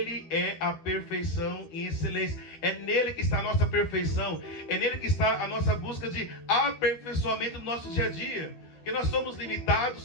é a perfeição em excelência. É nele que está a nossa perfeição. É nele que está a nossa busca de aperfeiçoamento do nosso dia a dia. Porque nós somos limitados,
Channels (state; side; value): late; right; 13 ms